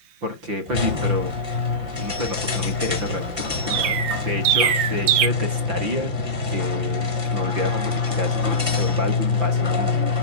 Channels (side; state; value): left; late; 5.9 ms